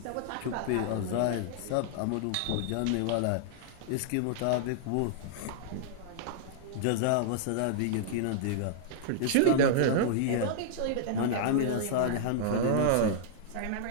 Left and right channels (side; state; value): both; different; correlation -0.01